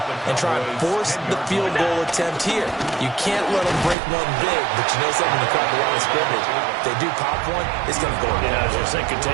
and try and force the field goal attempt here. You can't let them break one big, but you know something, to crowd the line of scrimmage. If they do pop one, it's going to go in. Yeah, I was just thinking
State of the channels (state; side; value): drops out; left; at 4.0 s